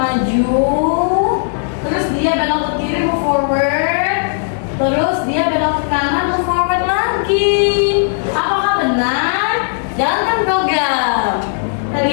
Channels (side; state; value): right; silent; 64 dB below the other